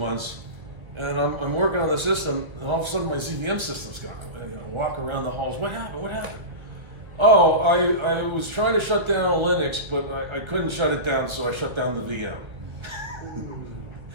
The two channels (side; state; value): left; late; 1.4 ms